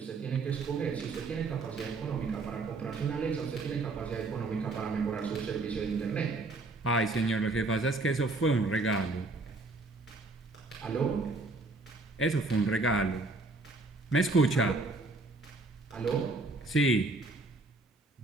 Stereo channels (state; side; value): quieter; left; 3.3 dB